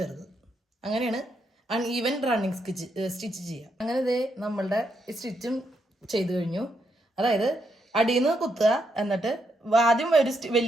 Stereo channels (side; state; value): both; normal; correlation 0.79